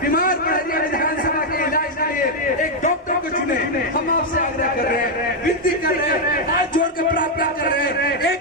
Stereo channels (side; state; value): both; normal; correlation 0.00